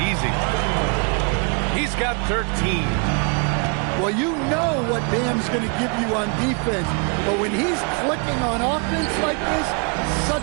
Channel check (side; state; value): left; quieter; 36.5 dB